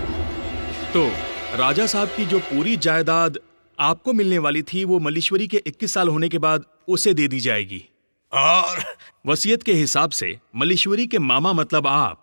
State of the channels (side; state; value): both; inverted; correlation -1.00